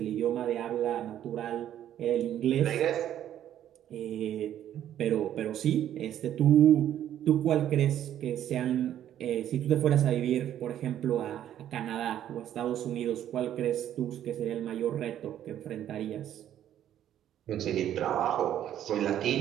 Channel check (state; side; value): quieter; left; 11.1 dB